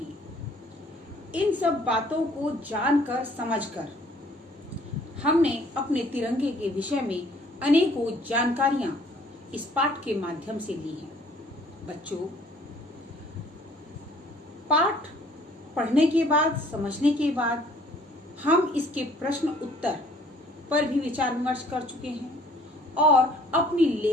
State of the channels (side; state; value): both; normal; correlation 0.57